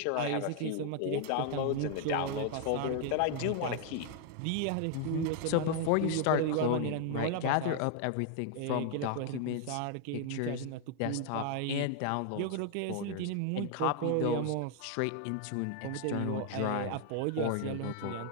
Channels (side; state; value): both; different; correlation 0.00